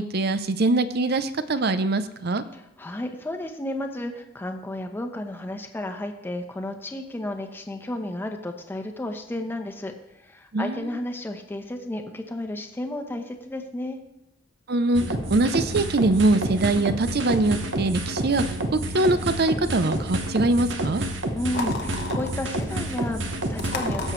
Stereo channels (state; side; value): normal; both; correlation 0.50